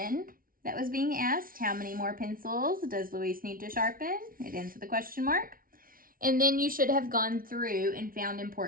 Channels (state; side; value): late; left; 0.42 ms